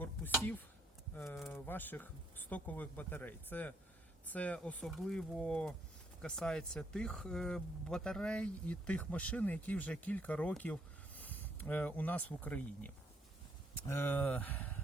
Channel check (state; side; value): normal; both; correlation 0.71